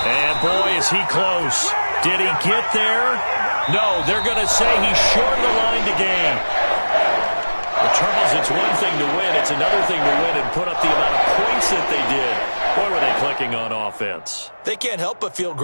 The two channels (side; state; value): both; inverted; correlation -1.00